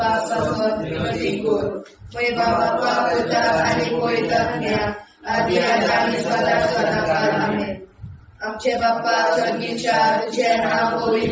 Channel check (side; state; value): both; identical; correlation 1.00